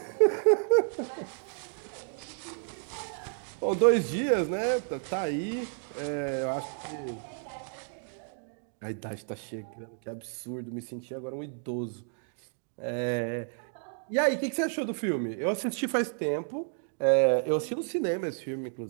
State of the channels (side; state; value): left; silent; 57 dB below the other